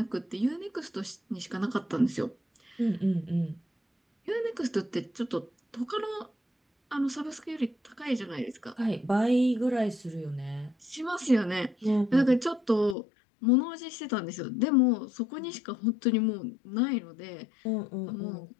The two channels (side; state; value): right; drops out; at 13.0 s